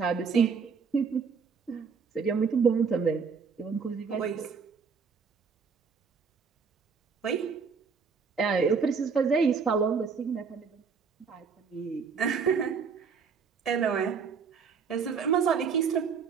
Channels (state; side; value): quieter; left; 5.8 dB